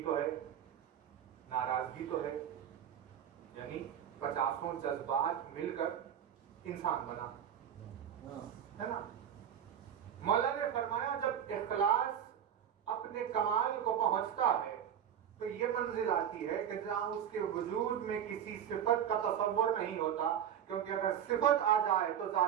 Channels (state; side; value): quieter; left; 9.4 dB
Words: تو ہے، ناراضگی تو ہے. یعنی 50 جذبات مل کر انسان بنا ہے نا. مولا نے فرمایا جب اخلاص اپنے کمال کو پہنچتا ہے تو یہ منزل آتی ہے کہ جہاں اس کے وجود میں کسی صفت کا تصور نہیں ہوتا، کیونکہ اگر صفت آ جائے تو